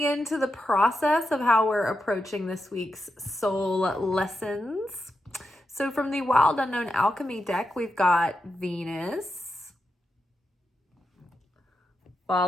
into the process of how we're approaching this week's soul lessons. So from the Wild Unknown Alchemy deck, we've got Venus,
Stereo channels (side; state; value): both; normal; correlation 0.87